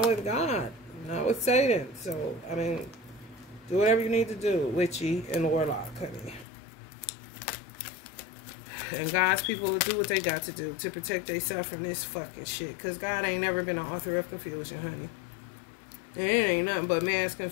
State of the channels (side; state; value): right; drops out; at 6.5 s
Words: with God, not with Satan. So, I mean, do whatever you need to do, witchy and warlock, honey. And God's people will do what they got to do to protect themselves from this fucking shit. Because God ain't never been an author of confusion, honey. And it ain't nothing but mass